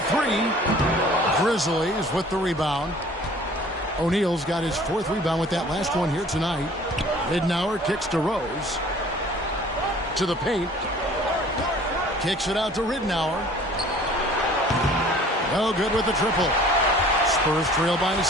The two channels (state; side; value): normal; both; correlation 0.50